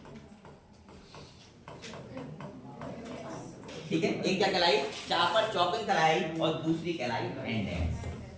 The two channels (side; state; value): both; identical; correlation 1.00